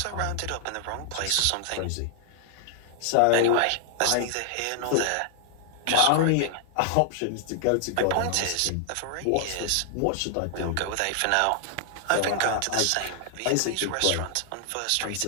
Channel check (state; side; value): different; both; correlation 0.00